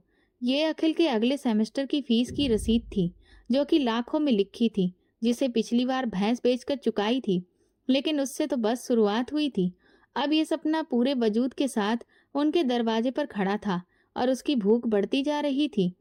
ये अखिल के अगले सेमेस्टर की फीस की रसीद थी, जो कि लाखों में लिखी थी, जिसे पिछली बार भैंस बेचकर चुकाई थी। लेकिन उससे तो बस शुरुआत हुई थी। अब ये सपना पूरे वजूद के साथ उनके दरवाजे पर खड़ा था और उसकी भूख बढ़ती जा रही थी।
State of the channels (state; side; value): identical; both; correlation 1.00